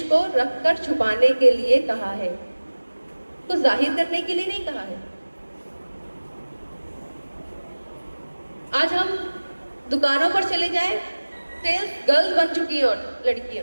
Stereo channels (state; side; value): inverted; both; correlation -1.00